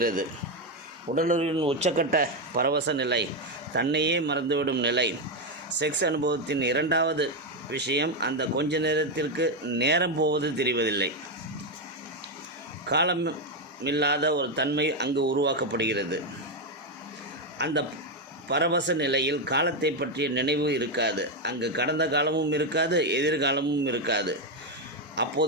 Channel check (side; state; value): both; normal; correlation 0.06